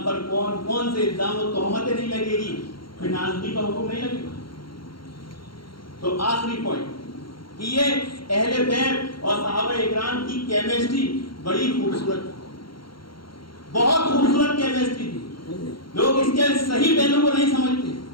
پر کون کون سے الزام و تہمتیں نہیں لگے گی، پھر نازلی کا حکم نہیں لگے گا۔ تو آخری پوائنٹ کہ یہ اہل بیت اور صحابہ اکرام کی کیمسٹری بڑی خوبصورت، بہت خوبصورت کیمسٹری تھی۔ لوگ اس کے صحیح پہلو کو نہیں سمجھتے۔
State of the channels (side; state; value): right; late; 0.73 ms